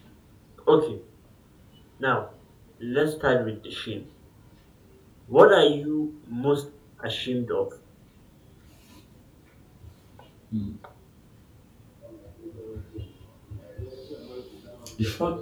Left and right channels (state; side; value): identical; both; correlation 1.00